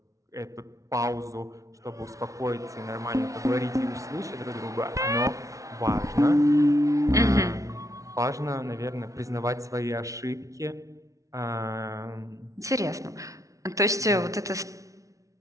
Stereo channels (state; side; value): late; left; 0.16 ms